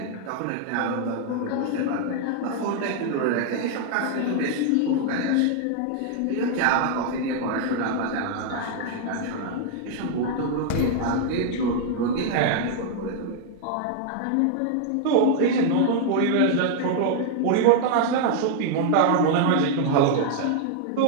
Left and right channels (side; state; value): both; different; correlation 0.00